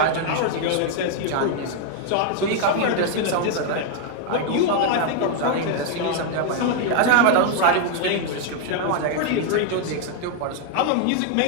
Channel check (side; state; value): both; different; correlation 0.00